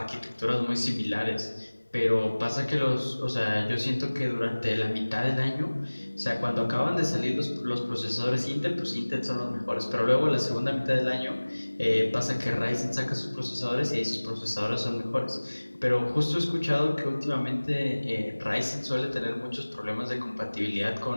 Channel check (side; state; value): both; inverted; correlation -1.00